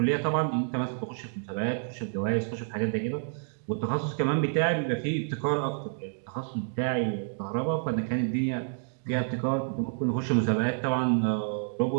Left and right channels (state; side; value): silent; left; digital silence